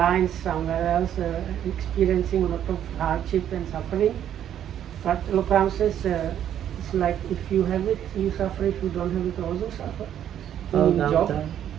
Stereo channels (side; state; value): left; quieter; 10.3 dB